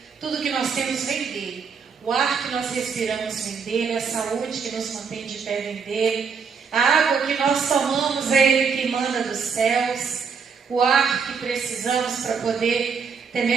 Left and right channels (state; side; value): quieter; left; 5.8 dB